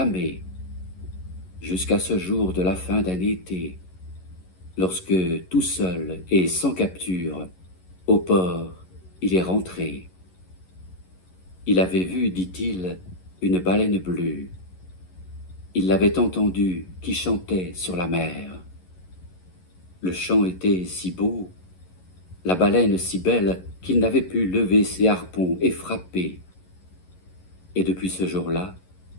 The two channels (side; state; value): right; late; 11 ms